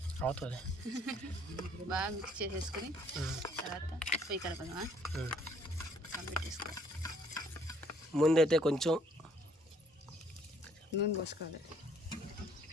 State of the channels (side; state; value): both; normal; correlation 0.63